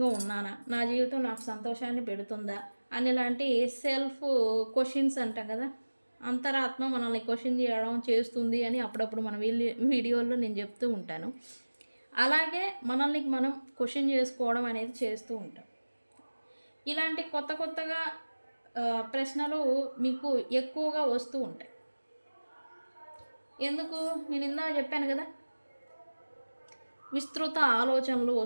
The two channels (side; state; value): both; inverted; correlation -1.00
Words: ఉన్నానా, నా జీవితం నాకు సంతోషాన్ని పెడుతుందా అని లాంటి సెల్ఫ్ క్వశ్చన్స్ అంటాం కదా, అంతరాత్మ మనల్ని క్వశ్చన్ చేయడం చేస్తుంది అని అప్పుడప్పుడు మన వీడియోల్లో నేను చెప్తూ ఉంటాను. అలాగే మనల్ని మనం క్వశ్చన్ చేసుకోవడం అనేది చేస్తూ ఉంటాం. ఇలాంటి కొత్తగా ప్రశ్నలు మీకు ఎక్కువగా వస్తూ ఉంటాయి. ఎందుకు? నేను ఇందా చెప్పాను కదా, విస్తృత ఆలోచనలు